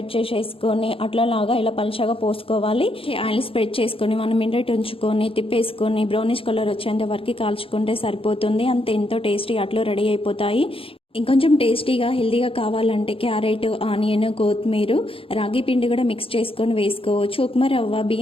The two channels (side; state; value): right; late; 0.27 ms